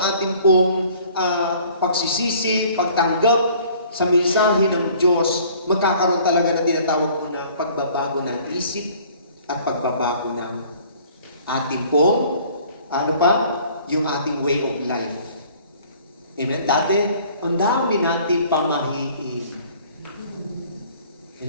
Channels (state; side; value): inverted; both; correlation -0.53